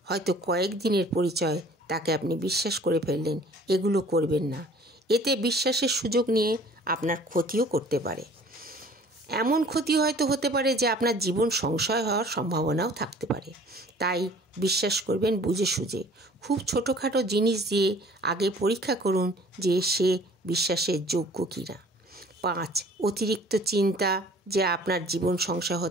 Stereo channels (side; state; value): both; normal; correlation 0.51